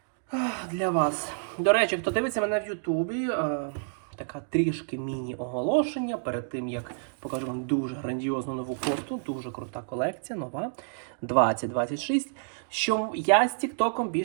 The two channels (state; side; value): silent; left; digital silence